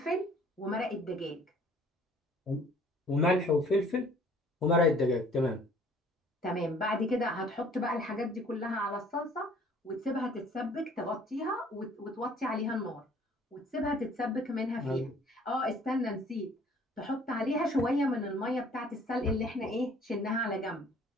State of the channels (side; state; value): both; normal; correlation 0.55